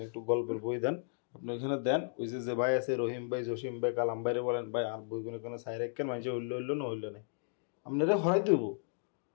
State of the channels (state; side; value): silent; right; digital silence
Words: একটু গল্পের বই দেন, আপনি ওইখানে দেন। ওই যে ভাই আছে রহিম ভাই, জসিম ভাই, কালাম ভাইরে বলেন ভাই আর বইগুলো কোনো সাইড রাখেন, মানুষে হইলো না হইলো না, আপনারা হরাই দেব।